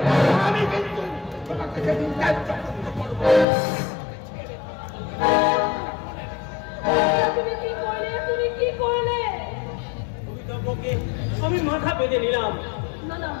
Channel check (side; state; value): right; drops out; at 3.5 s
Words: আমি কিন্তু তোমাকে সেদিন ত্যায্য করবো। তুমি কি করলে? তুমি কি করলে? আমি মাথা বেঁধে নিলাম। না না,